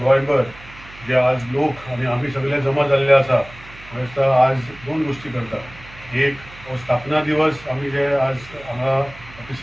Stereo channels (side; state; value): right; noise; hum, 20 dB below the sound